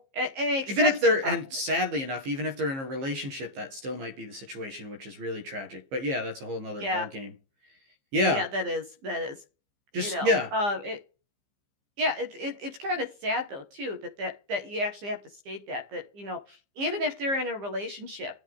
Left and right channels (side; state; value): left; late; 15 ms